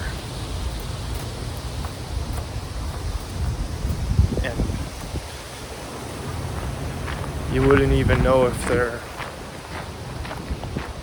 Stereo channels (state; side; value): identical; both; correlation 1.00